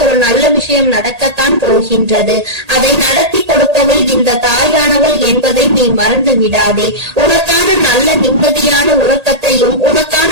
ஒரு நல்ல விஷயம் நடக்கத்தான் போகின்றது. அதை நடத்தி கொடுப்பவள் இந்த தாயானவள் என்பதை நீ மறந்து விடாதே. உனக்கான நல்ல நிம்மதியான உறக்கத்தையும்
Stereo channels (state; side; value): late; left; 1.8 ms